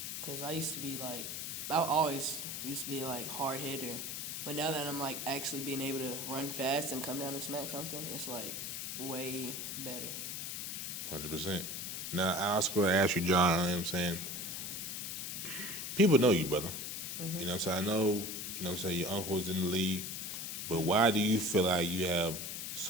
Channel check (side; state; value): left; noise; hiss, 5 dB below the sound